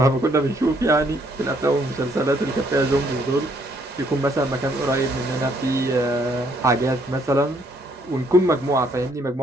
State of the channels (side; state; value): both; normal; correlation 0.68